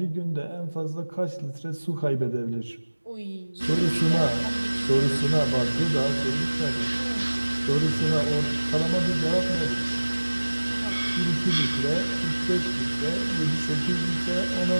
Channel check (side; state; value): both; inverted; correlation -1.00